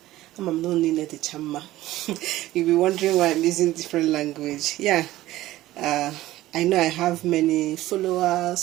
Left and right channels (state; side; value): quieter; left; 15.8 dB